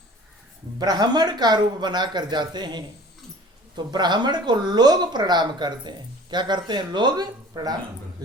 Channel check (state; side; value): normal; both; correlation 0.46